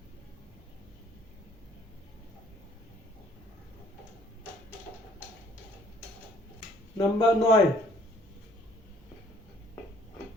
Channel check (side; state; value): both; normal; correlation 0.59